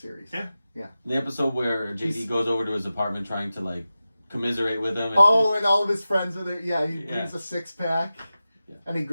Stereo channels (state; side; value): inverted; both; correlation -0.94